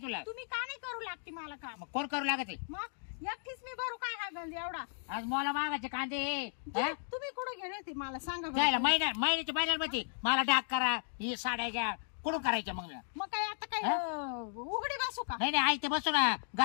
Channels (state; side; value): silent; right; digital silence